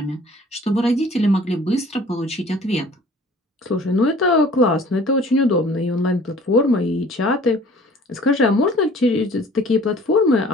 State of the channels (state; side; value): normal; both; correlation 0.50